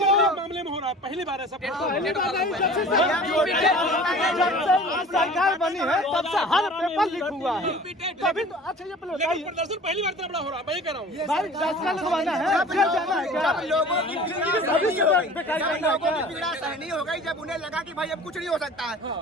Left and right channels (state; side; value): normal; both; correlation 0.43